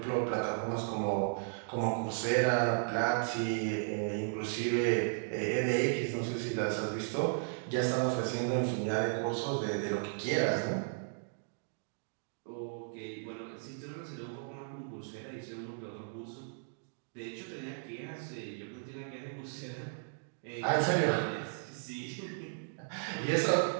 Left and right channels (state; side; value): silent; left; digital silence